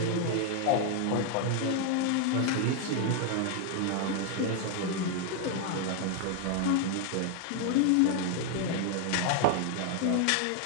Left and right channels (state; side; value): different; both; correlation 0.00